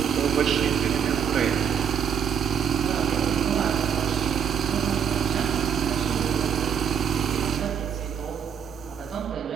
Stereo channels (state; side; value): quieter; left; 7.5 dB